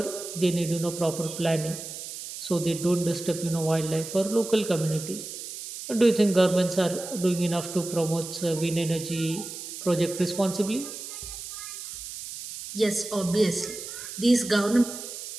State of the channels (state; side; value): noise; right; hiss, 10 dB below the sound